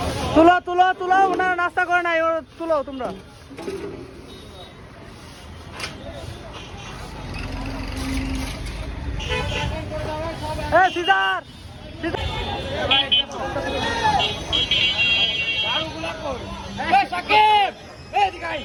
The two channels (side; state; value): both; identical; correlation 1.00